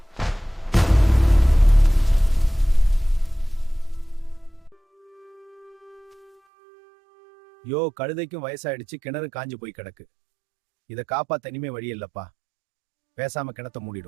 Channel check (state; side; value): drops out; left; at 6.4 s